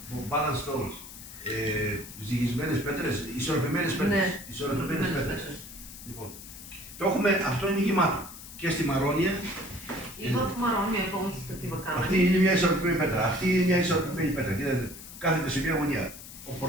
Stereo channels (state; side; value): noise; left; hiss, 14 dB below the sound